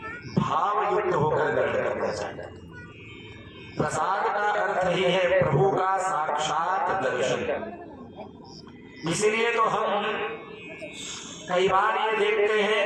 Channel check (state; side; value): identical; both; correlation 1.00